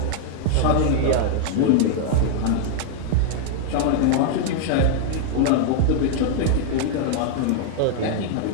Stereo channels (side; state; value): both; different; correlation 0.00